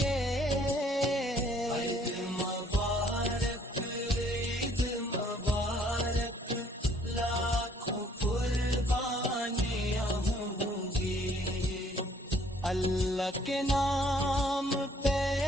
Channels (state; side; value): normal; both; correlation 0.62